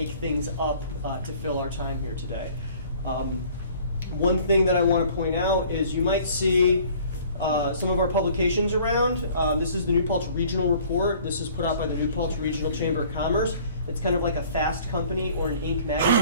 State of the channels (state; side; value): inverted; both; correlation -0.53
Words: things up to fill our time here today. One thing that I want to point out is you might see some of our publications around. This is the New Paltz Regional Report. This is put out by the New Paltz Regional Chamber of Commerce. It's kind of like a Fast Company or an Inc.